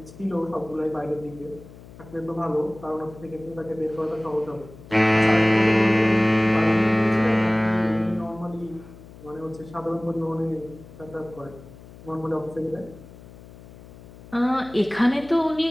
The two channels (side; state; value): left; noise; hum, 19 dB below the sound